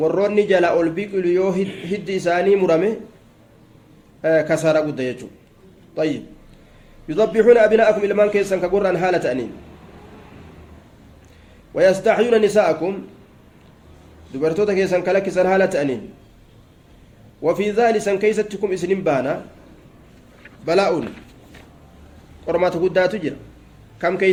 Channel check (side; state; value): both; identical; correlation 1.00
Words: jala ol biqilu yoo hiddi isaanii murame kasaara guddaa jechuudha. طيب يذبحون أبناءكم ilmaan keessan ka gurraan haala ta'aniin ويستحيون نساءكم dubartoota keessan ka lakkisan haala ta'aniin وفي ذلك سن كيستكم إسنين بانا بلاء qormaata guddaatu jira kam